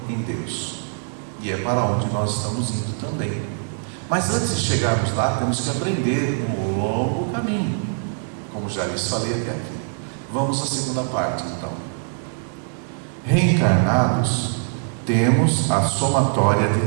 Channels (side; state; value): left; silent; digital silence